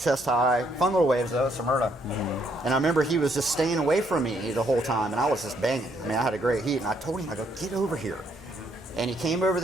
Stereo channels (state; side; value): normal; both; correlation 0.71